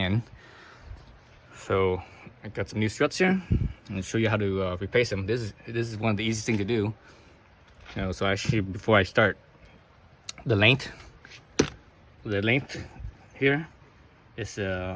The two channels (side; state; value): both; identical; correlation 1.00